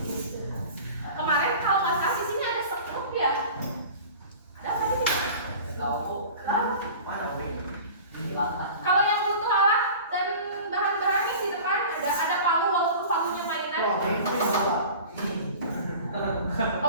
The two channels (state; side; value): inverted; both; correlation -0.40